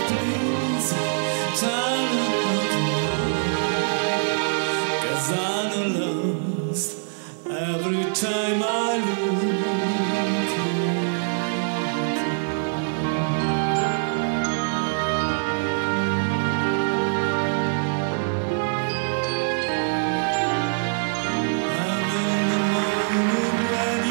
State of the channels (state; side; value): silent; left; 63 dB below the other